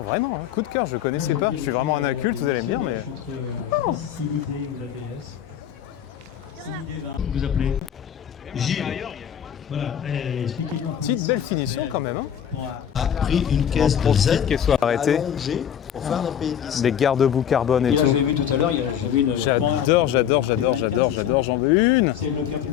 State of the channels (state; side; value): quieter; right; 9.4 dB